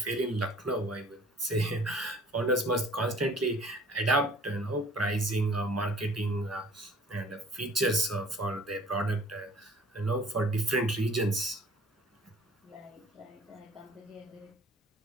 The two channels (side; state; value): both; normal; correlation 0.51